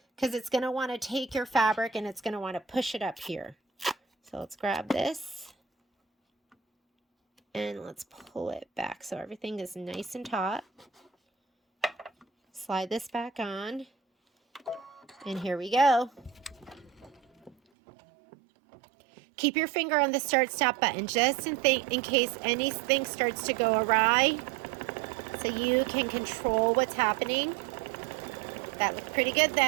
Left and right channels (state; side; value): drops out; left; at 17.6 s